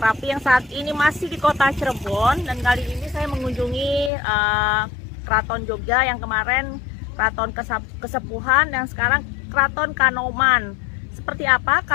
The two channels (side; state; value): right; drops out; at 4.1 s